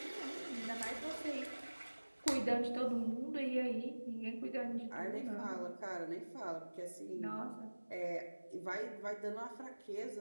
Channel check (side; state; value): both; inverted; correlation -1.00